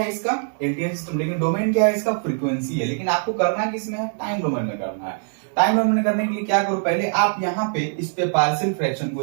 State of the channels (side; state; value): left; silent; 64 dB below the other